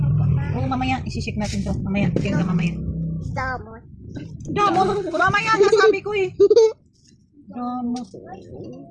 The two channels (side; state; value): both; identical; correlation 1.00